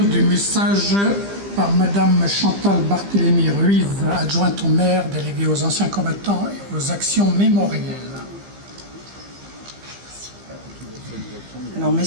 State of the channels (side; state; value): left; late; 15 ms